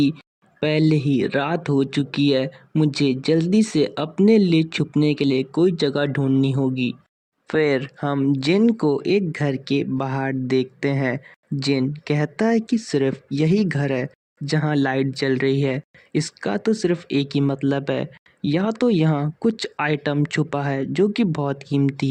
पहले ही रात हो चुकी है, मुझे जल्दी से अपने लिए छुपने के लिए कोई जगह ढूंढनी होगी। फिर हम जिन को एक घर के बाहर देखते हैं जिन कहता है कि सिर्फ यही घर है जहाँ लाइट जल रही है। इसका तो सिर्फ एक ही मतलब है, या तो यहाँ कुछ आइटम छुपा है जो कि बहुत कीमती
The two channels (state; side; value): identical; both; correlation 1.00